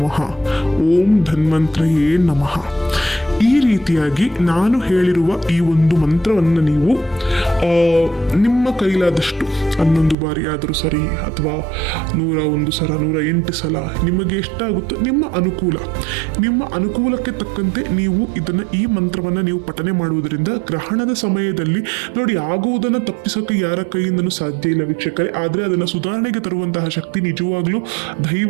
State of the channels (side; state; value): left; drops out; at 10.2 s